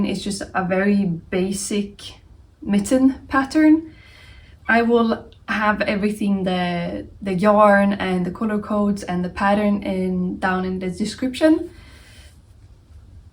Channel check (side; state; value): both; identical; correlation 1.00